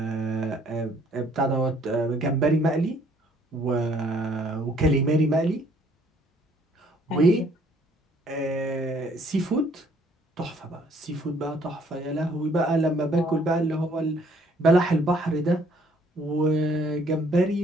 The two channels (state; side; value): normal; both; correlation 0.62